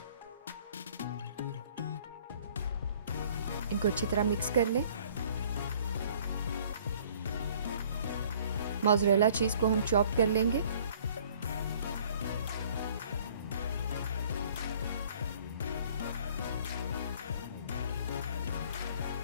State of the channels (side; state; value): both; inverted; correlation -0.55